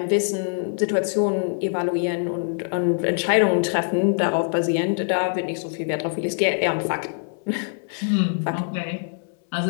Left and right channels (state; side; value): silent; right; 63 dB below the other